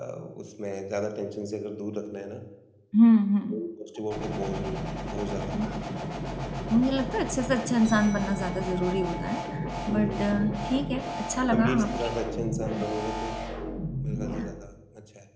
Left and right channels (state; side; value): identical; both; correlation 1.00